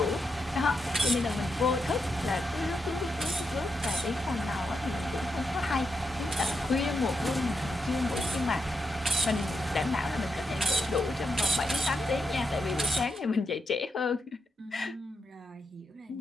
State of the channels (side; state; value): both; normal; correlation 0.84